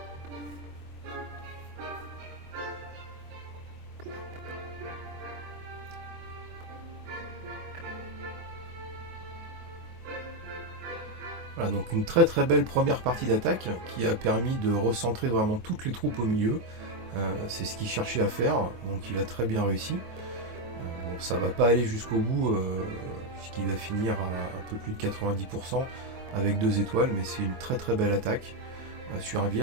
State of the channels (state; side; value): late; left; 24 ms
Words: Voilà, donc une très très belle première partie d'attaque qui a permis de recentrer vraiment toutes les troupes au milieu. C'est ce qu'il cherchait à faire, donc il a très bien réussi. Bon, ça va pas aller jusqu'au bout, puisqu'il va finir à un peu plus de 90% avec 2 étoiles, mais c'est une très très belle attaque sur un